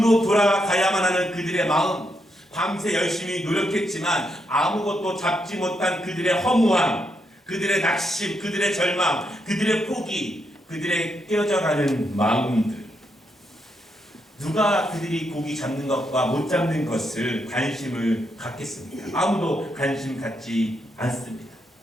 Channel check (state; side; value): normal; both; correlation 0.80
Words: 돌아가야만 하는 그들의 마음, 밤새 열심히 노력했지만 아무것도 잡지 못한 그들의 허무함, 그들의 낙심, 그들의 절망, 그들의 포기, 그들의 깨어져가는 마음들, 누가 그들이 고기 잡는 것과 못 잡는 것을 관심을 갖겠습니까? 아무도 관심 갖지 않습니다.